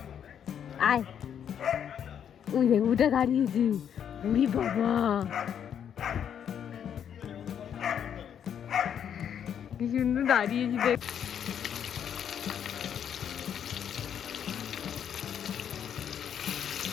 আয়। ওই দেখ ওটা দাঁড়িয়েছে, উড়ি বাবা কি সুন্দর দাঁড়িয়েছি দেখ।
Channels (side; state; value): right; quieter; 8.7 dB